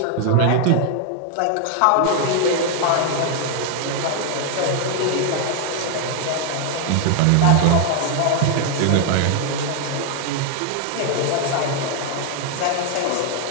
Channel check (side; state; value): both; different; correlation 0.00